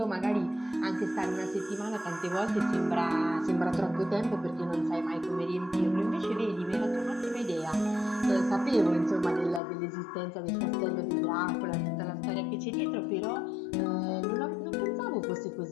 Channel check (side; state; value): right; drops out; at 9.6 s